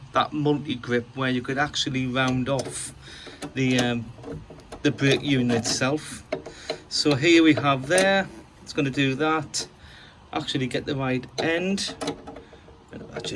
that multi-grip where you could actually round off the brake unit itself. So here we have there, it's going to do that, actually get the right end, that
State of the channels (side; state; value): both; identical; correlation 1.00